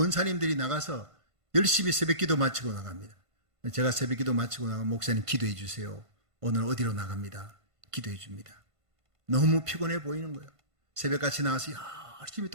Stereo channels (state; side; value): late; left; 1.5 ms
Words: 나가서 열심히 새벽기도 마치고 나갑니다. 제가 새벽기도 마치고 나가면 목사님 기도해 주세요. 오늘 어디로 나갑니다. 기도해 줍니다. 너무 피곤해 보이는 거예요. 새벽같이 나와서 열심히